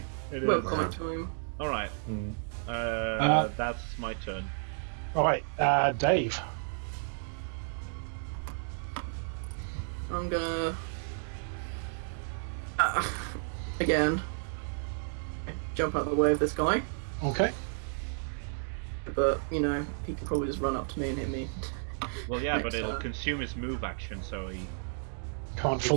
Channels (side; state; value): left; silent; digital silence